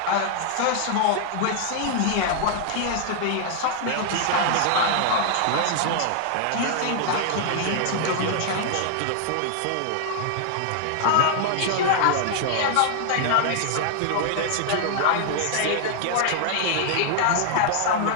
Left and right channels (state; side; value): different; both; correlation 0.00